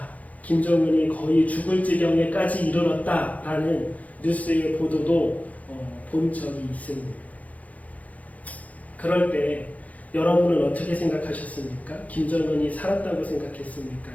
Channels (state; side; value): late; right; 0.072 ms